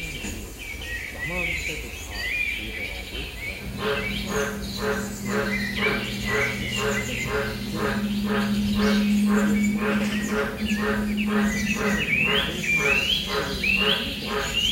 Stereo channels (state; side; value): identical; both; correlation 1.00